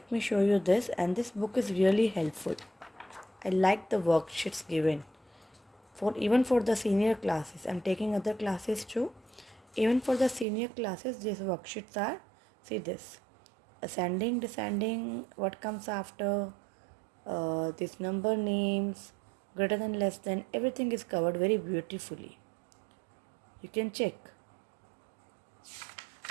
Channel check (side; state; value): left; drops out; at 10.5 s